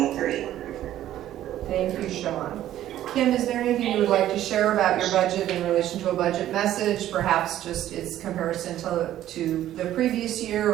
Thank you, Sean. Kim, is there anything you would like to share about your budget in relation to a budget message? Perhaps just its comparison to the previous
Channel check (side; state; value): left; quieter; 12.7 dB